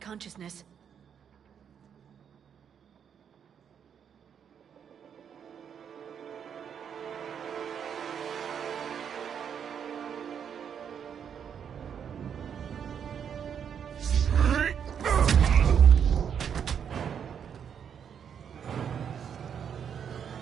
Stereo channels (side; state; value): left; quieter; 7.9 dB